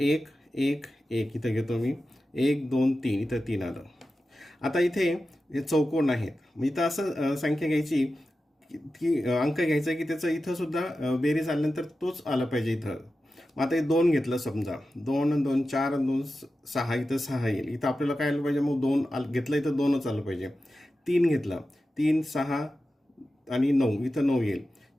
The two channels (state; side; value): normal; both; correlation 0.93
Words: 1 1 इथं घेतो मी 1 2 3 इथं 3 आलं. आता इथे हे चौकोन आहेत मग इथं असं संख्या घ्यायची की अंक घ्यायचा की त्याचं इथं सुद्धा बेरीज आल्यानंतर तोच आला पाहिजे इथं. मग आता हे 2 घेतलं समजा, 2 आणि 2 4 आणि 2 6, इथं 6 येईल. इथं आपल्याला काय आलं पाहिजे, मग 2 घेतलं इथं 2च आलं पाहिजे. 3 घेतला, 3 6 आणि 9, इथं 9 येईल.